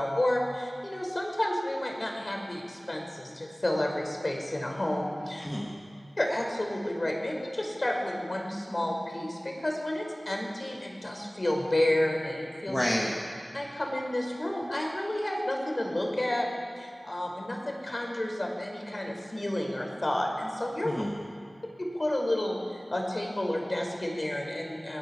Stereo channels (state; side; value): normal; both; correlation 0.98